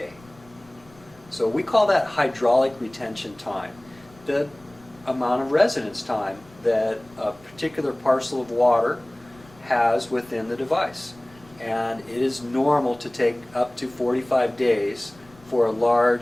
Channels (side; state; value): left; noise; rumble, 26 dB below the sound